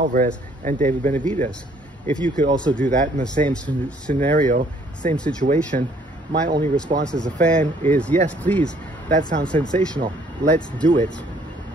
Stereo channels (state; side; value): normal; both; correlation 0.62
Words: and David Benavidez. If you could also do that in the same scenario, same situation, my only response as a fan is, yes, please, that sounds sensational, let's do it.